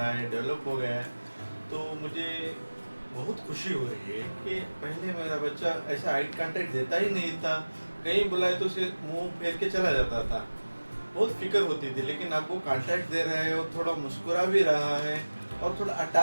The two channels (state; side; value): inverted; both; correlation -1.00